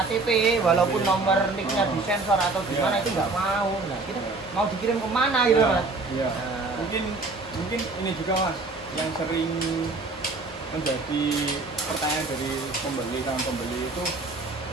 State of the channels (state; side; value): quieter; left; 3.5 dB